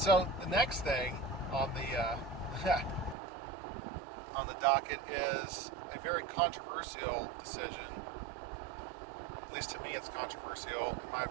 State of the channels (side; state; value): left; drops out; at 3.2 s